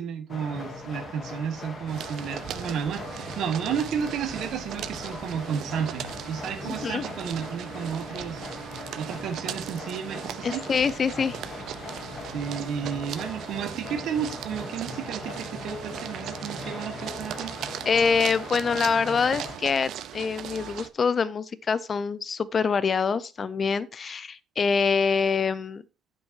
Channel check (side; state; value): both; normal; correlation 0.74